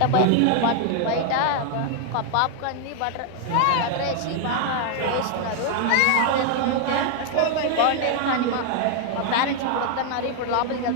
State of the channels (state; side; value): different; both; correlation 0.00